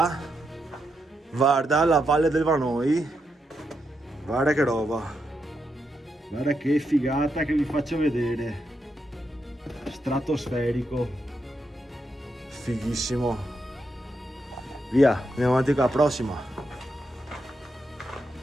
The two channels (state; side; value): normal; both; correlation 0.83